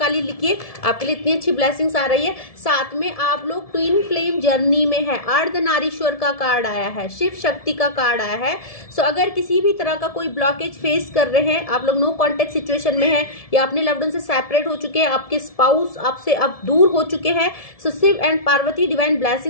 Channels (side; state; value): right; late; 1.7 ms